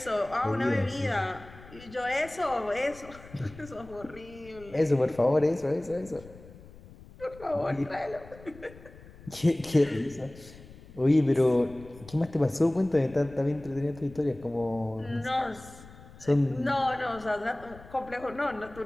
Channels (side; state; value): left; noise; rumble, 20 dB below the sound